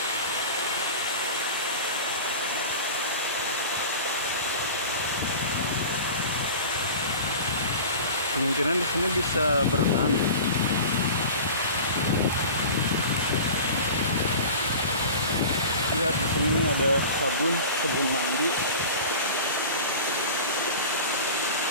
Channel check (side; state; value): both; inverted; correlation -0.36